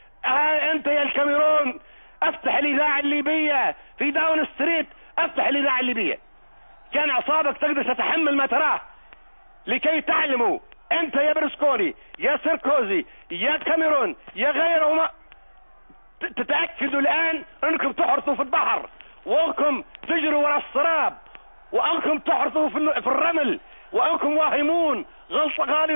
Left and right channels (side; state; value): both; inverted; correlation -1.00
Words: انت يا الكاميرون، افتح الاذاعه الليبيه في داون ستريت، افتح الاذاعه الليبيه. كان اعصابك تقدر تتحمل ما تراه، لكي تعلموا انت يا برسكوني يا سيركوزي يا كاميرون يا غيرهما، تتاكدوا الان انكم تحرثوا في البحر، وانكم تجروا وراء السراب، وانكم تحرثوا في الرمل، وانكم واهمون